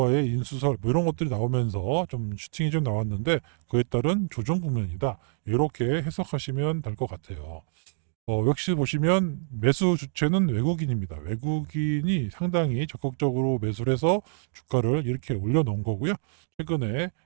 인수설 뭐 이런 것들이 나오면서 좀 슈팅이 좀 나왔는데 그에 따른 조정 국면이다. 이렇게 해석하시면 될 것 같아요. 역시 보시면 매수 주체는 외국인입니다. 외국인이 상당히 적극적으로 매수를 해서 주가를 이렇게 올려놓은 거고요. 최근에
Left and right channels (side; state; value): left; silent; digital silence